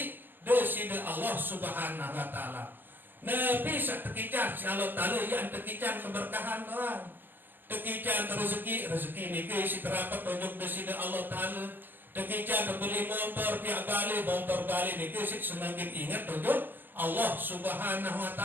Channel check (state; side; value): late; left; 0.094 ms